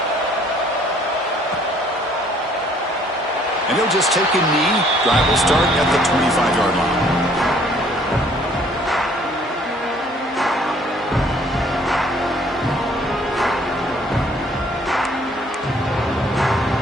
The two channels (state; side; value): normal; both; correlation 0.60